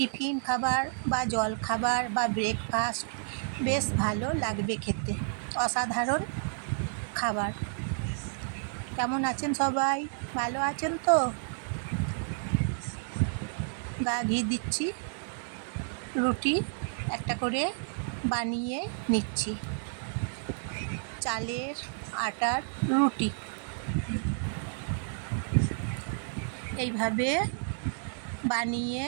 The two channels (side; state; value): left; silent; digital silence